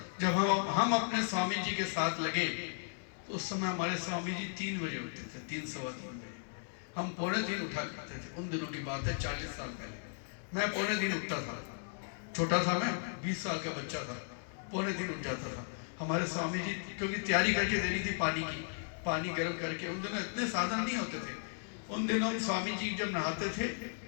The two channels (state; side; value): silent; right; 54 dB below the other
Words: जब हम अपने स्वामी जी के साथ लगे तो उस समय हमारे स्वामी जी 3 बजे उठते थे, 3 सवा 3 बजे। हम 2:45 उठा करते थे। उन दिनों की बात है, 40 साल पहले। मैं 2:45 उठता था, छोटा था मैं, 20 साल का बच्चा था, 2:45 उठ जाता था। हमारे स्वामी जी, क्योंकि तैयारी करके देनी थी पानी की, पानी गर्म करके। उन दिनों इतने साधन नहीं होते थे। उन दिनों स्वामी जी जब नहाते थे